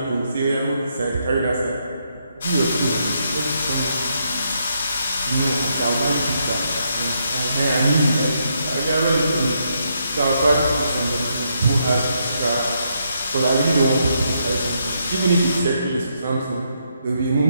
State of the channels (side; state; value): both; inverted; correlation -0.77